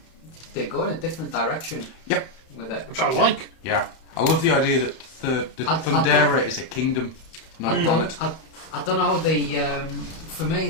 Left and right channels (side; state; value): right; late; 31 ms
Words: They go in a different direction. Yep. With it, which I like. Yeah. I love the idea that the Thundera is a kingdom, not a planet. I don't know. For